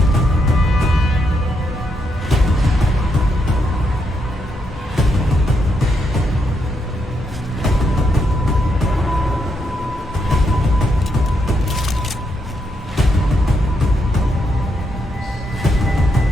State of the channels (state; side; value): normal; both; correlation 0.79